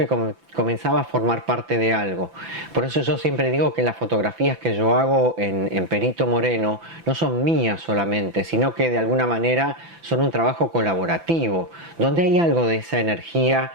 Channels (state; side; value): late; left; 5.9 ms